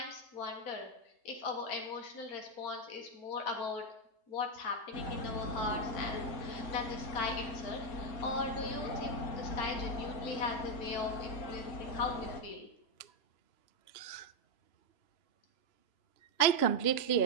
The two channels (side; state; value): right; late; 3.0 ms